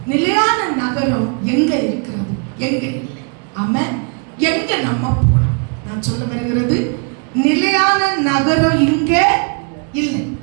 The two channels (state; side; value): quieter; left; 37.1 dB